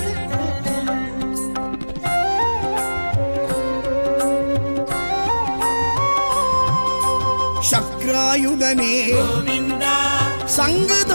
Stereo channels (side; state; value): both; inverted; correlation -1.00